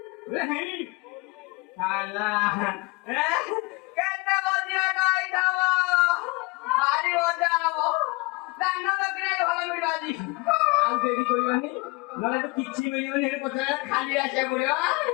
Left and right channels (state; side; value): quieter; right; 25.8 dB